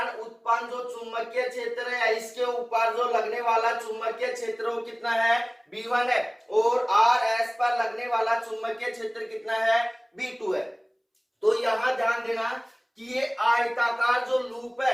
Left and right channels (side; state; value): both; identical; correlation 1.00